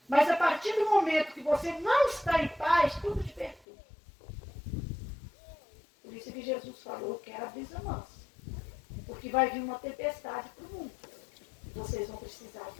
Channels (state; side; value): drops out; right; at 3.6 s